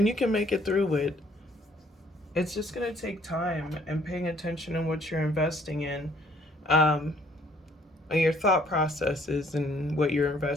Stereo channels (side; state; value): both; normal; correlation 0.62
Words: you can make it through it. It's just gonna take time and paying attention in what you're investing in, um, and your thought processes and what you're